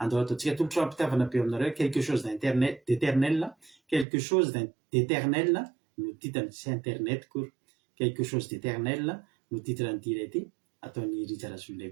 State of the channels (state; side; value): drops out; left; at 4.0 s